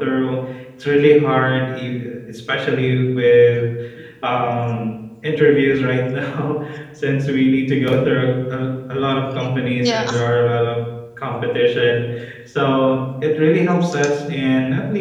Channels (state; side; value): identical; both; correlation 1.00